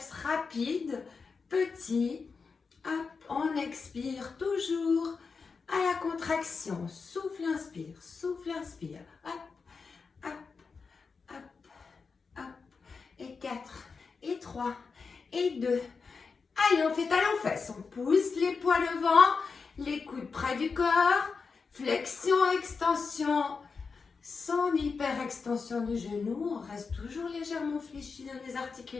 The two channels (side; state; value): right; quieter; 5.0 dB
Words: rapides, petits. Hop, on expire toujours à la contraction. Souffle, inspire, souffle, inspire. Hop, hop, hop, hop. Et 4, et 3, et 2. Allez, on fait talons-fesses. On pousse les poids devant, les coudes près du corps. Flexion, extension, sans hyper-extension du genou. On reste toujours légèrement fléchi dans les